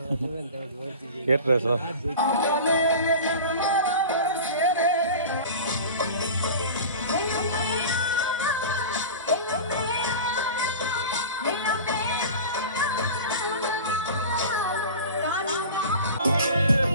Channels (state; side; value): inverted; both; correlation -0.34